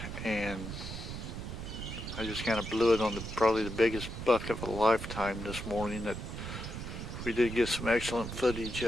and I just kind of blew it on probably the biggest buck of a lifetime this morning. That we did get some excellent footage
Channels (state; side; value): noise; right; rumble, 7 dB below the sound